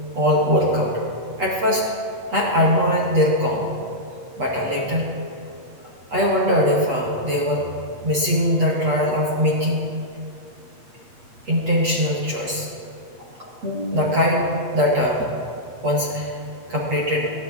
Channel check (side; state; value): left; late; 8.2 ms